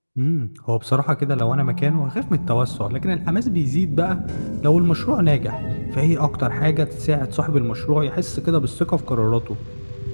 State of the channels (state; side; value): inverted; both; correlation -1.00